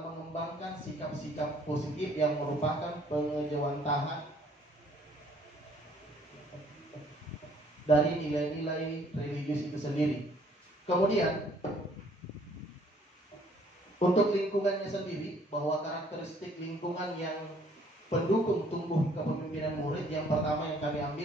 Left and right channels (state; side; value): normal; both; correlation 0.61